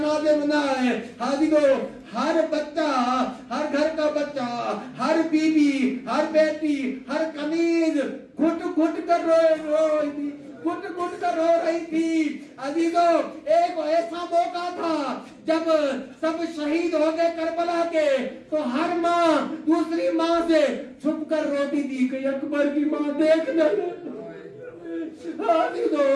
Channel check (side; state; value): both; identical; correlation 1.00